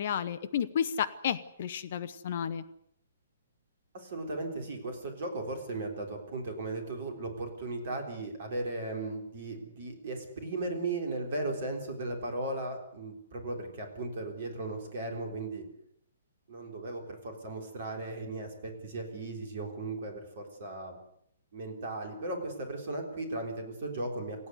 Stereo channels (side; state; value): both; inverted; correlation -0.54